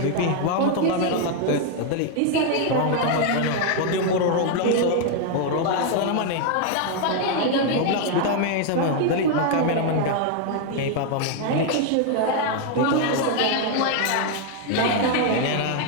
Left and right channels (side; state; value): both; different; correlation 0.00